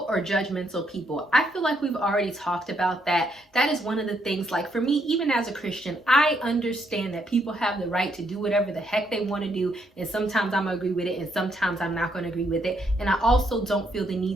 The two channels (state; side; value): normal; both; correlation 0.74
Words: or judgmental people. I feel like we've already talked about that. That is one of the things, like for me, even as a Christian, I understand that people have the right to do whatever the heck they want to do, and sometimes I'm gonna agree with it and sometimes I'm not gonna agree with it. And I also don't feel the